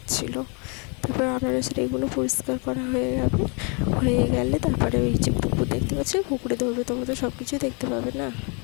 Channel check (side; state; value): right; quieter; 34.7 dB